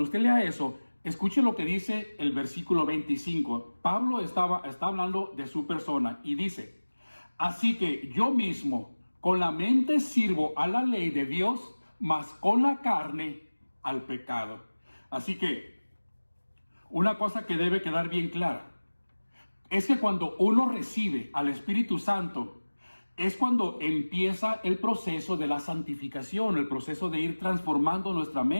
usted lea eso, escuche lo que dice el versículo 25. Pablo está hablando de su persona y dice, así que yo mismo con la mente sirvo a la ley de Dios, mas con la carne al pecado. Así que una cosa que debe quedar bien clara es que cuando uno recibe al Espíritu Santo, es cuando empieza el proceso de la santificación, el proceso de ir transformando nuestra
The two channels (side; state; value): both; inverted; correlation -1.00